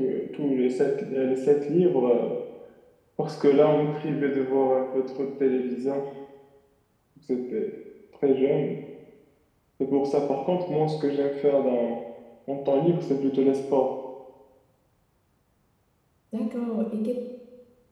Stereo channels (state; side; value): identical; both; correlation 1.00